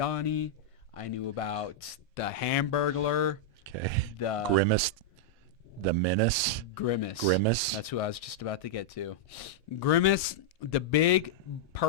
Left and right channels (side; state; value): both; normal; correlation -0.06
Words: I knew about the Hamburglar. Okay. The Grimace. The Menace. Grimace. That's who I was just about to get to. Grimace, the big